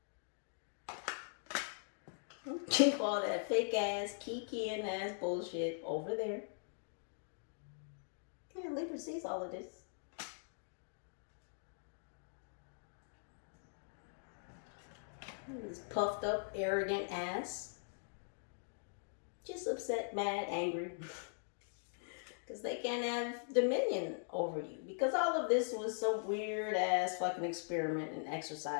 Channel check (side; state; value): right; silent; digital silence